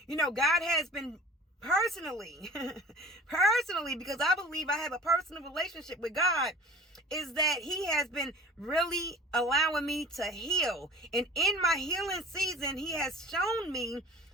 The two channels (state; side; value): normal; both; correlation 0.45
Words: God has been personally, because I believe I have a personal relationship with God, is that he has been really allowing me to heal. And in my healing season, he has shown me